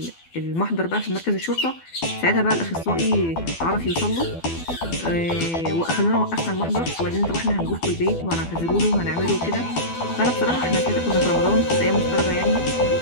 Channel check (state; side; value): late; right; 12 ms